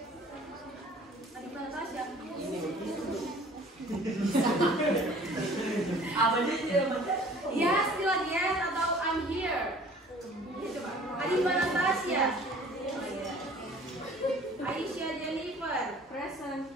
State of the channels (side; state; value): both; normal; correlation 0.50